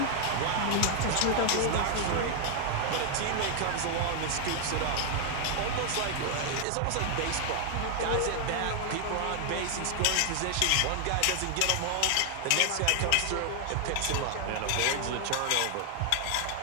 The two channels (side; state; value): both; different; correlation 0.00